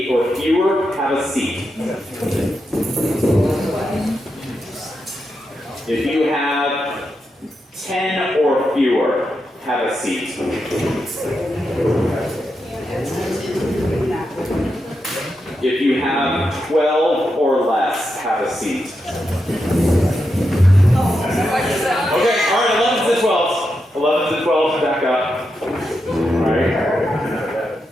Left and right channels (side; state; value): both; normal; correlation 0.86